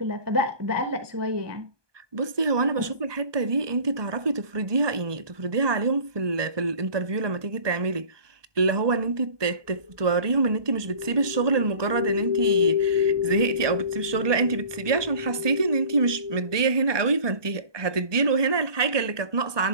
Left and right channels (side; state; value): left; late; 1.2 ms